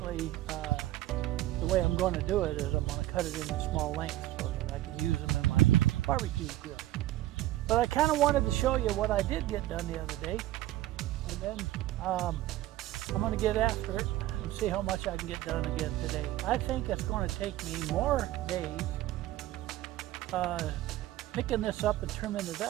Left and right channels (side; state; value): left; quieter; 15.1 dB